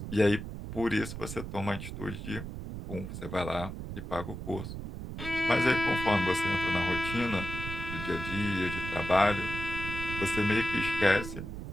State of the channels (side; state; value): right; noise; rumble, 8 dB below the sound